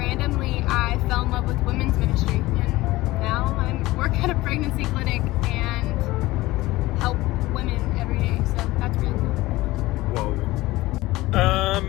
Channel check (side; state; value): right; quieter; 18.7 dB